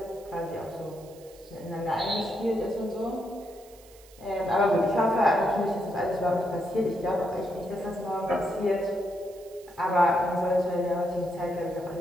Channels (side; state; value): right; noise; hiss, 24 dB below the sound